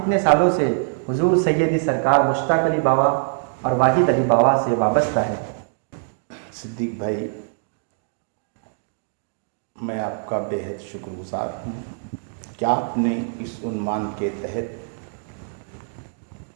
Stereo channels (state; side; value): silent; left; digital silence